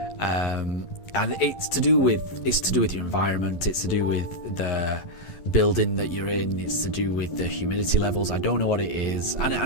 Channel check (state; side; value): late; right; 11 ms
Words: And it's to do with your environment. It's to do with the building that you're in. It's to do with the humidity levels. I don't know what it is,